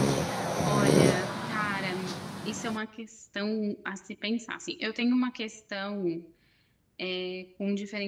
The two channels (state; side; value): identical; both; correlation 1.00